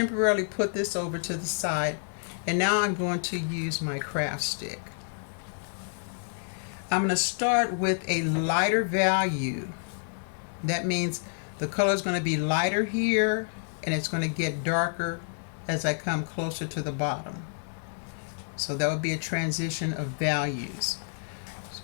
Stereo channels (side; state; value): right; silent; digital silence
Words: put this over to the side, and now I'm going to use my craft stick. I'm going to start with a lighter value. That means the color is going to be lighter here, and it's going to get darker as I come closer to the bottom. So that would be a transition of values. So